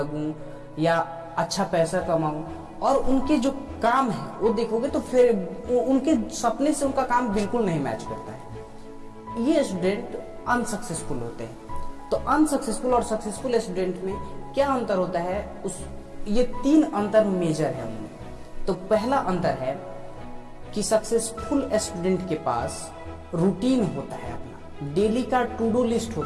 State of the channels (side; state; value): both; identical; correlation 1.00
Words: या अच्छा पैसा कमाऊं, और उनके जो काम है वो देखोगे तो फिर उनके सपने से उनका काम बिल्कुल नहीं मैच करता है। ये स्टूडेंट अनसक्सेसफुल होते हैं। तो अनसक्सेसफुल और सक्सेसफुल स्टूडेंट में क्या अंतर होता है, ये 3 अंतर मेजर है उनमें। तो पहला अंतर है कि सक्सेसफुल स्टूडेंट के पास रूटीन होता है, अपना डेली का टू डू लिस्ट